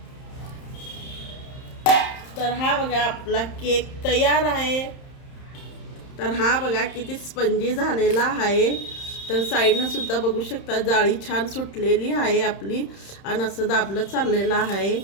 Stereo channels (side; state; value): right; late; 31 ms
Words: तर हा बघा आपला केक तयार आहे. तर हा बघा किती स्पंजी झालेला आहे. तर साईडनं सुद्धा बघू शकता जाळी छान सुटलेली आहे आपली आणि असं दाबलं चाललेलं आहे.